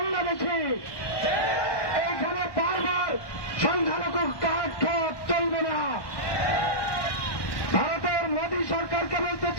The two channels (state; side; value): late; right; 1.1 ms